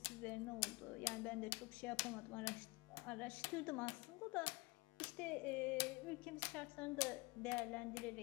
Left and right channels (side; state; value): right; quieter; 24.9 dB